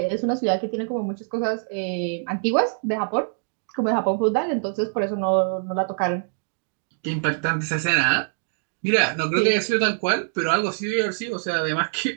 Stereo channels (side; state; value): left; silent; digital silence